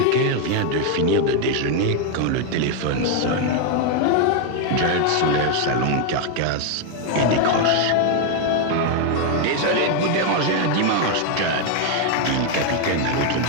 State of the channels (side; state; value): both; different; correlation 0.01